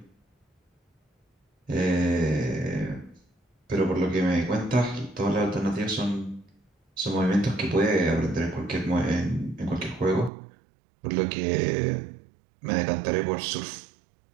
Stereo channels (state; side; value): drops out; left; at 10.3 s